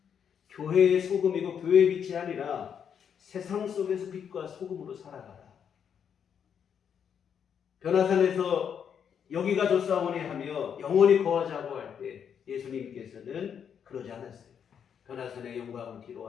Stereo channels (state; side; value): quieter; right; 7.8 dB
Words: 교회의 소금이고 교회의 빛이 아니라 세상 속에서 빛과 소금으로 살아가라. 변화산에서 여기가 좋사오니 하며 영원히 거하자고 할 때 예수님께서는 그러지 않았어요. 변화산의 영광을